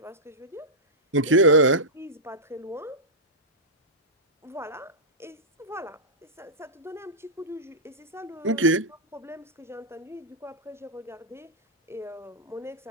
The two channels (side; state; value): both; normal; correlation -0.12